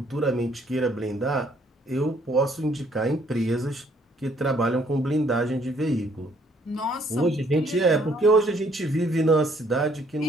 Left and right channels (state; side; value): normal; both; correlation 0.65